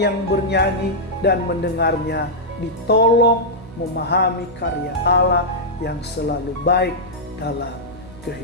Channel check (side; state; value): right; noise; hum, 21 dB below the sound